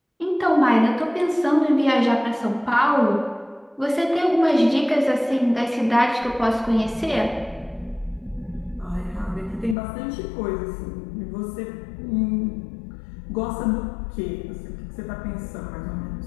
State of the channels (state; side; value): drops out; right; at 9.8 s